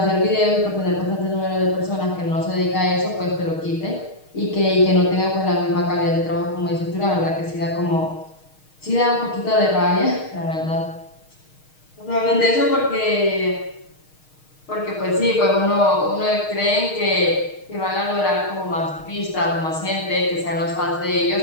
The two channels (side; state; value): right; late; 6.4 ms